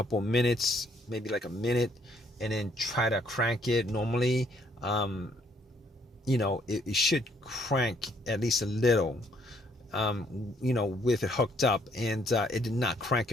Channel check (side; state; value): both; normal; correlation 0.67